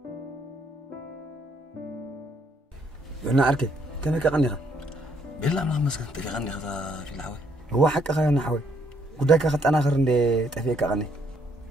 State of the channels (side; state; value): both; normal; correlation 0.70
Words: أنا أركي كم هيك غنيها بالله ما مسكت تغني هذا في الحوي هو حق خيرنا حوي قداك أخذت أنا آخر اللي تفيك أغني